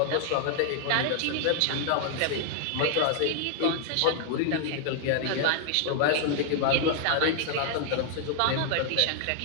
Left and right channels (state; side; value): different; both; correlation 0.00